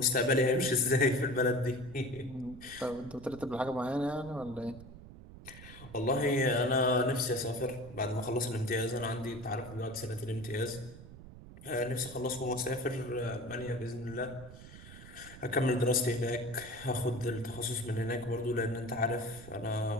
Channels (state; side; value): noise; right; rumble, 16 dB below the sound